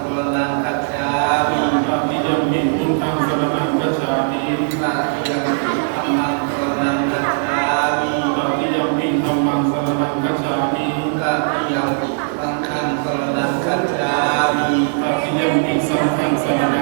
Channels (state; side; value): silent; left; digital silence